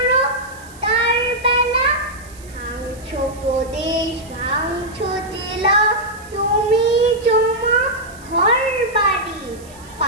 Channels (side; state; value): right; noise; hiss, 22 dB below the sound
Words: তার বেলা ভাঙছো প্রদেশ, ভাঙছো জেলা, জমি জমা ঘর বাড়ি,